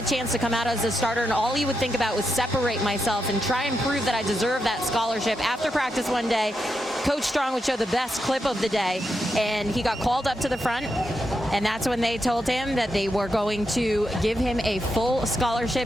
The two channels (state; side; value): normal; both; correlation 0.85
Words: chance to come out as a starter, and all he would think about was separate myself and try and prove that I deserve that scholarship. After practice one day, Coach Strong would show the best clip of the day, and he got called up to the front, and that's when they told him that they were going to give him a full